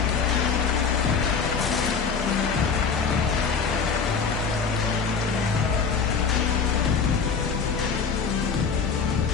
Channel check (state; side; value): quieter; right; 5.8 dB